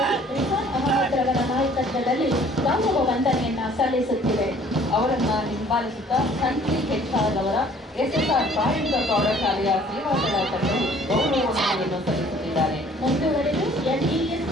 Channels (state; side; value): normal; both; correlation 0.55